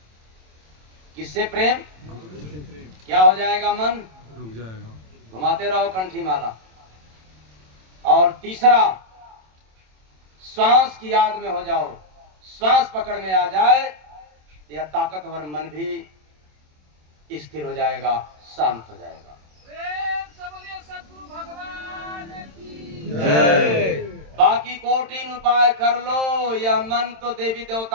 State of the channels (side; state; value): left; late; 27 ms